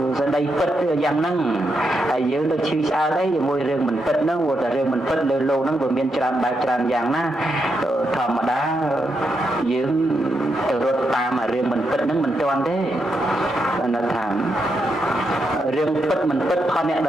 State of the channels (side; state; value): both; normal; correlation 0.83